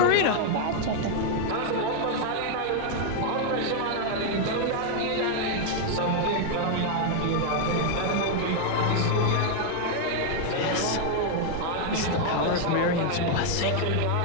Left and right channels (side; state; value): both; different; correlation 0.00